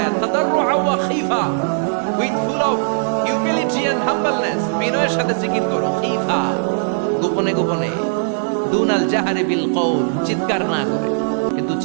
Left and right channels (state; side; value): silent; left; 67 dB below the other